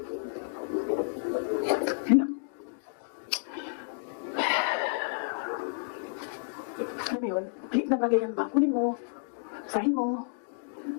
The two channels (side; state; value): right; silent; digital silence